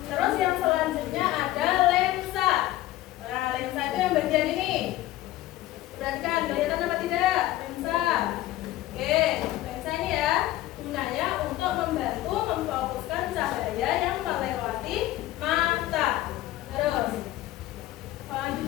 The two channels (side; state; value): right; quieter; 15.6 dB